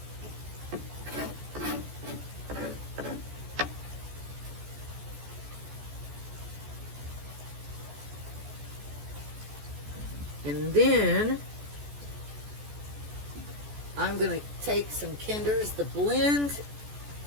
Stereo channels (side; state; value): left; late; 14 ms